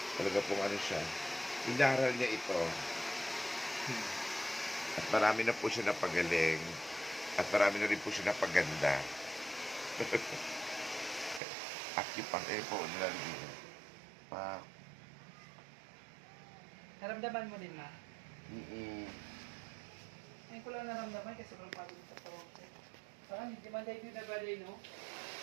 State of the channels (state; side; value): drops out; left; at 11.4 s